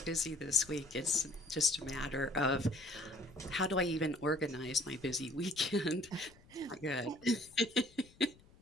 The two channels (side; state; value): left; noise; rumble, 26 dB below the sound